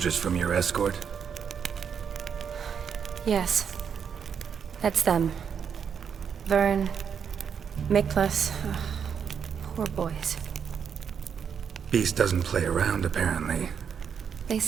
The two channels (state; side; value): quieter; left; 7.3 dB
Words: from your escort? Yes. That's them. Vern, Miklas. Poor boys. Beast doesn't play around, apparently. They